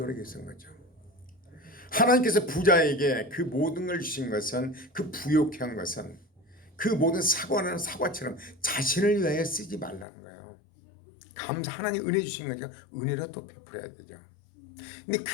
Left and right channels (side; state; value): right; drops out; at 10.1 s